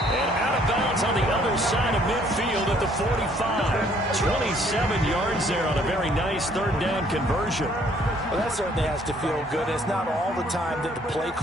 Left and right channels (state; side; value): normal; both; correlation 0.62